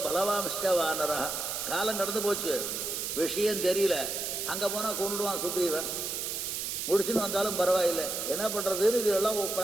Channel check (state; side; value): noise; right; hiss, 3 dB below the sound